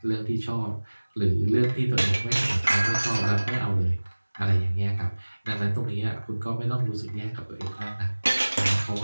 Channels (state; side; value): inverted; both; correlation -1.00